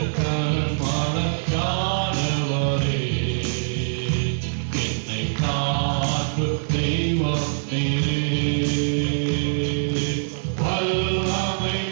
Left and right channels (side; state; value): left; silent; digital silence